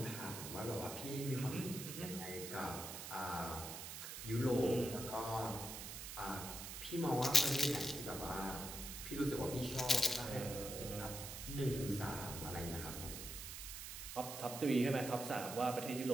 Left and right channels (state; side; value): noise; right; hiss, 8 dB below the sound